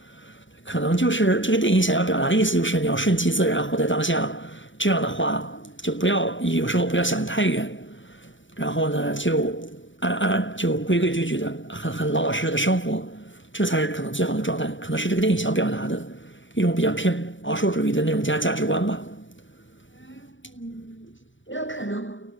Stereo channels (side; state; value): right; late; 0.55 ms